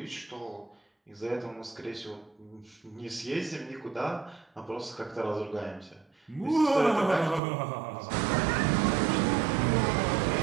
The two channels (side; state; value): left; drops out; at 7.4 s